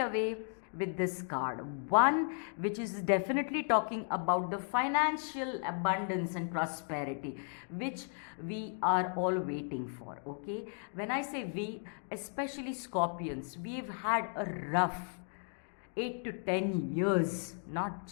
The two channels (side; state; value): right; silent; 54 dB below the other